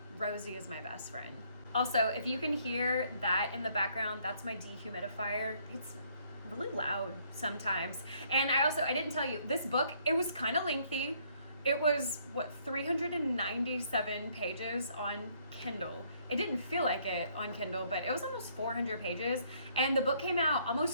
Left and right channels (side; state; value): both; inverted; correlation -0.66